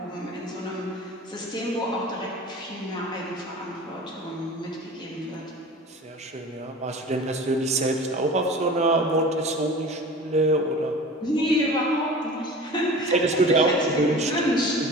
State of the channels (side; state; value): both; normal; correlation 0.38